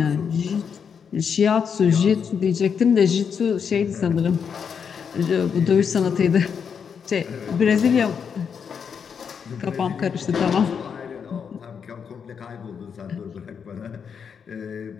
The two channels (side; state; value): right; quieter; 6.8 dB